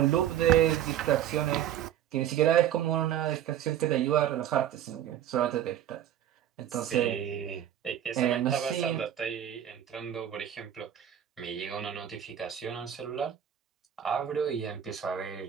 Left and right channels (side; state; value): left; quieter; 10.6 dB